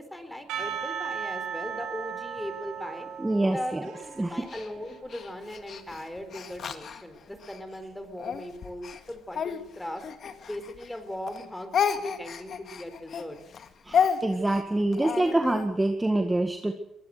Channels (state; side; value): normal; both; correlation 0.86